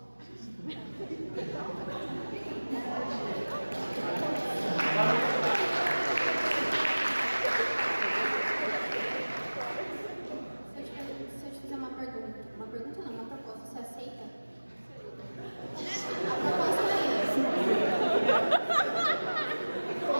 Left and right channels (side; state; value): both; inverted; correlation -1.00